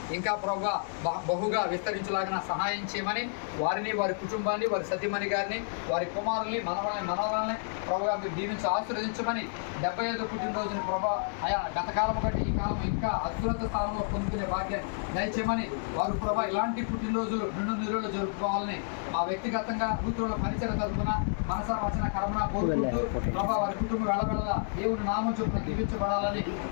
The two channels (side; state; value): right; silent; digital silence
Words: ఇంకా ప్రభా బహుగా విస్తరించేలాగా సహాయం చేయమని వారిని వారి కుటుంబాన్ని వారి సతీమణి గారిని వారి కుమారుల్ని మనవరాలని ప్రభాగా మీరు దీవించి ఆశీర్వదించమని 75వ పుట్టినరోజుని ప్రభా ఆయా గతకాలం కంటే ఈ కాలం ఇంకా అత్యున్నత స్థానంలో పొందుకునే భాగ్యాన్ని దయచేయమని వారు ప్రభా ఇలాంటి పుట్టినరోజులు నిరులు జరుపుకోవాలని మా వ్యక్తిగతంగా కూతురుల పరిచయ తరపున మనసా వచన కర్మణ కోరుకుంటూ ప్రభా వారి కుటుంబం వెళ్ళబెళ్ళ దేవుని నామం చొప్పున దీవించబడాలని